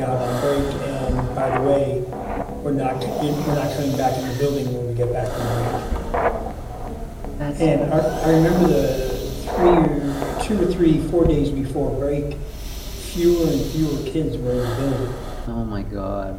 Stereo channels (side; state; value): both; identical; correlation 1.00